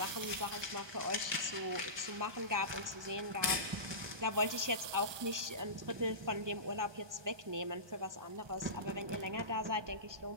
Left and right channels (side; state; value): left; late; 1.2 ms